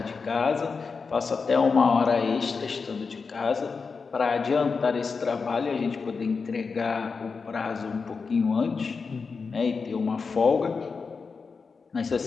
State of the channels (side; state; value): right; quieter; 4.9 dB